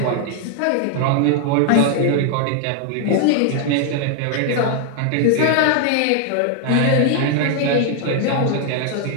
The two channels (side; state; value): both; different; correlation 0.00